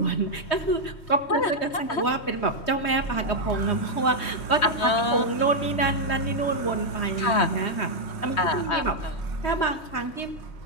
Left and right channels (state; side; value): late; right; 3.2 ms